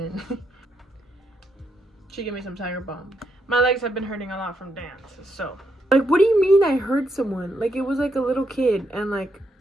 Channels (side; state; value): both; normal; correlation 0.79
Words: She gave me some Tiger Balm. My legs have been hurting a lot from dance, so. Like, what do you mean I heard someone? Like, it was like a little kid, and like,